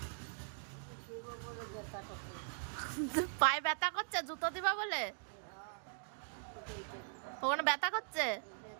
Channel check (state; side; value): silent; left; digital silence